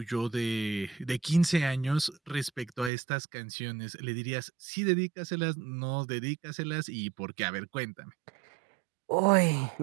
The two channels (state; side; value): drops out; left; at 2.9 s